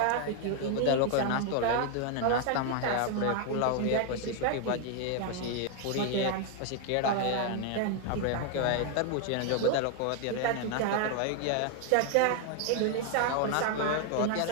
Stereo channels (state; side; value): different; both; correlation 0.00